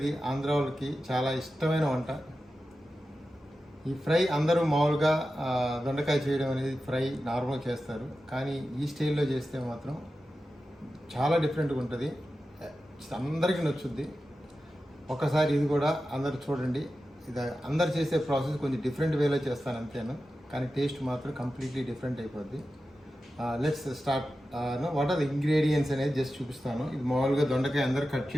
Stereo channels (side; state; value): both; normal; correlation 0.92